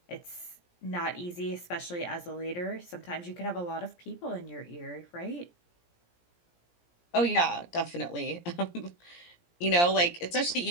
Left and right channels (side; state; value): right; late; 17 ms